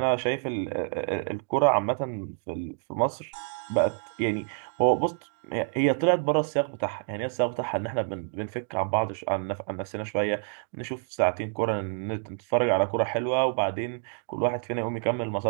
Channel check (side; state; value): left; silent; 59 dB below the other